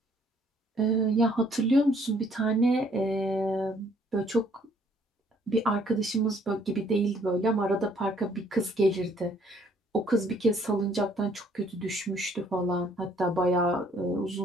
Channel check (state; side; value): normal; both; correlation 0.63